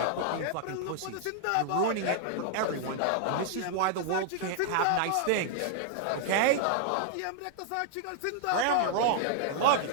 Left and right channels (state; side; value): different; both; correlation -0.01